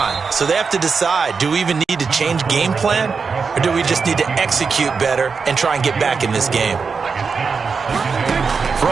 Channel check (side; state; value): left; quieter; 5.2 dB